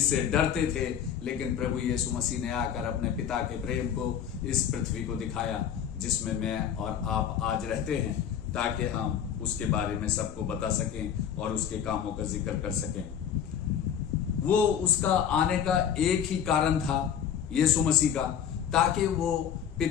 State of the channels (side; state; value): right; quieter; 8.8 dB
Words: डरते थे। लेकिन प्रभु यीशु मसीह ने आकर अपने पिता के प्रेम को इस पृथ्वी को दिखाया, जिसमें मैं और आप आज रहते हैं, ताकि हम उसके बारे में सबको बता सकें और उसके कामों का जिक्र कर सकें। वो उसका आने का एक ही कारण था, यीशु मसीह का, ताकि वो